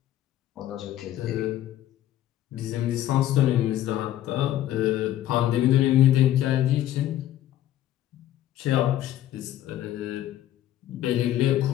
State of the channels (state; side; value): quieter; right; 12.8 dB